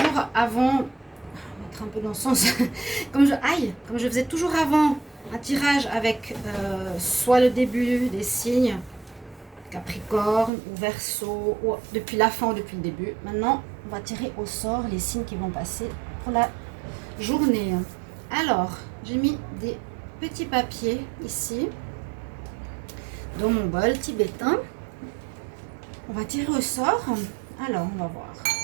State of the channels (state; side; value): drops out; left; at 10.5 s